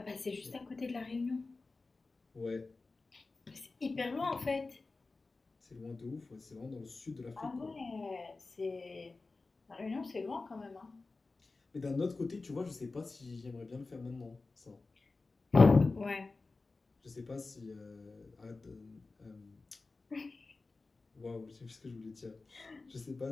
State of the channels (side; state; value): right; quieter; 3.7 dB